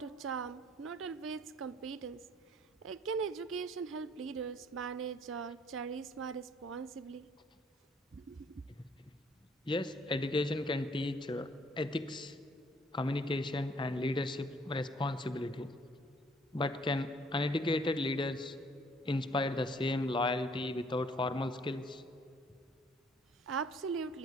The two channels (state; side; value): normal; both; correlation 0.61